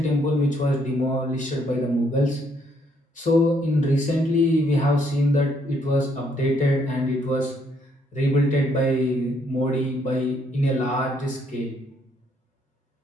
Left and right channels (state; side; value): normal; both; correlation 0.70